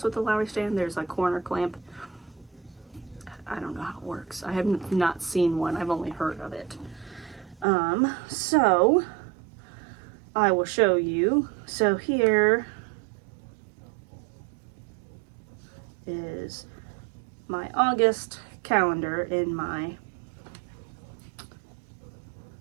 with the Lowry stand. There's a corner clamp. I don't know how it works. I have not seen one. I've only heard of it. So I will show you. So here is my August calendar in my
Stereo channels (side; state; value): left; drops out; at 7.7 s